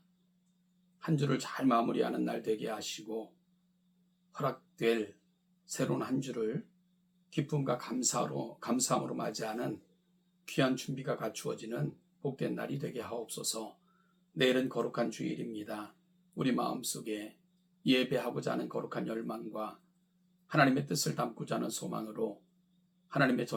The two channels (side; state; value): both; identical; correlation 1.00